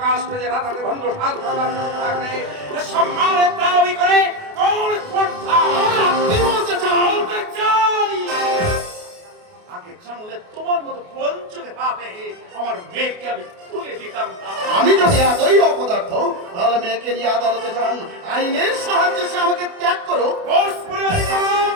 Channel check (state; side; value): late; left; 28 ms